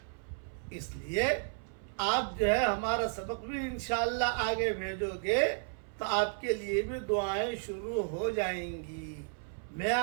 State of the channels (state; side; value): silent; left; 56 dB below the other